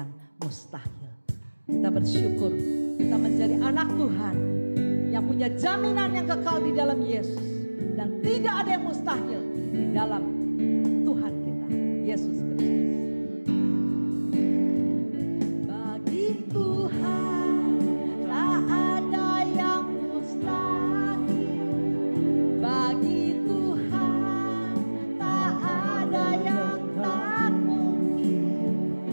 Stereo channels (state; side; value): inverted; both; correlation -1.00